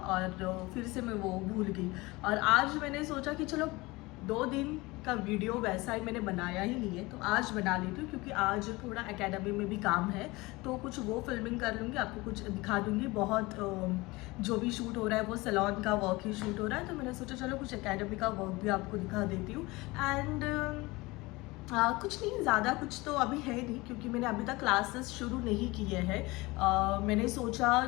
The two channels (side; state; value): right; quieter; 22.3 dB